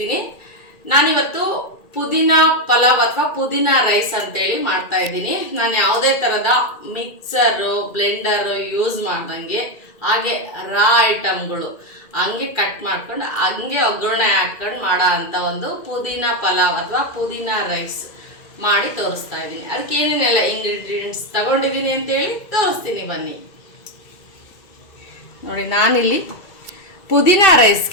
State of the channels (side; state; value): right; late; 2.3 ms